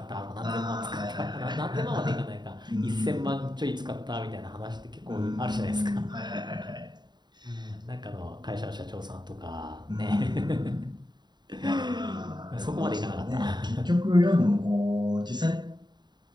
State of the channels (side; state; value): left; late; 0.21 ms